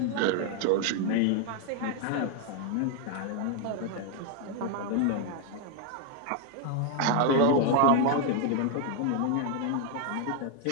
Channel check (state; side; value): different; both; correlation 0.01